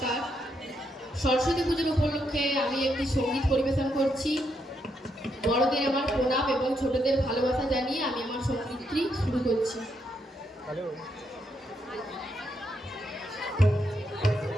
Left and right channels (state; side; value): normal; both; correlation 0.78